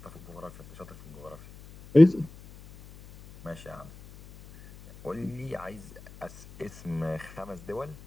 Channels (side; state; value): left; noise; hum, 20 dB below the sound